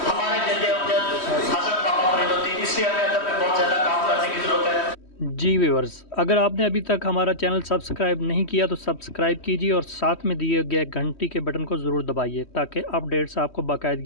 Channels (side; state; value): right; late; 3.1 ms